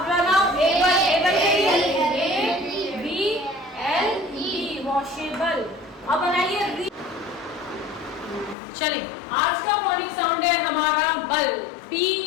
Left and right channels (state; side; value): drops out; right; at 8.6 s